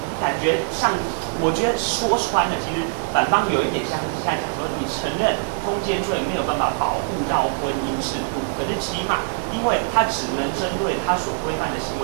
感觉上，我觉得说穿了，其实反方有一点像是现在讲说，你承认通奸罪没有办法保护到婚姻制度，可是起码因为它只能针对它所规范的行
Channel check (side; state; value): left; silent; digital silence